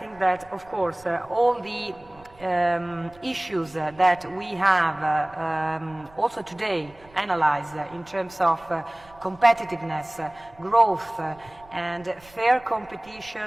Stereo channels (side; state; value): right; noise; rumble, 26 dB below the sound